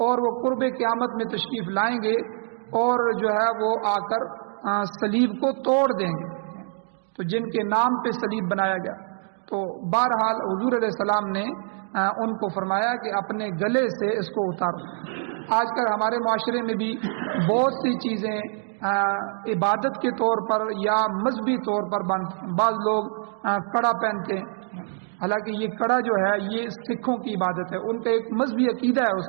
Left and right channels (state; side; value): silent; left; digital silence